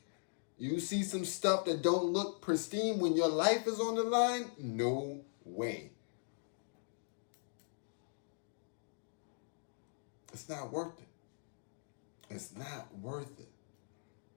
You see some stuff that don't look pristine when your life is on the line? No way. It's not worth it. It's not worth it.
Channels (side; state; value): right; silent; digital silence